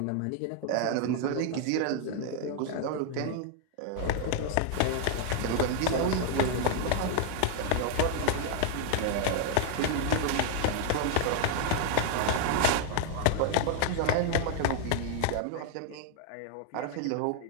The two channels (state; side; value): different; both; correlation 0.00